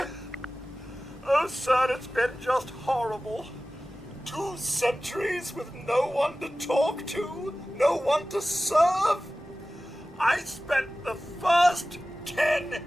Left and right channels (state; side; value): normal; both; correlation 0.96